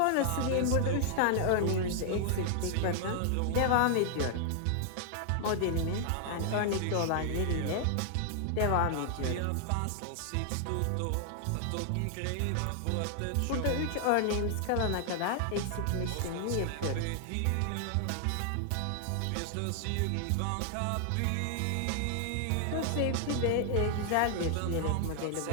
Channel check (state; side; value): different; both; correlation 0.00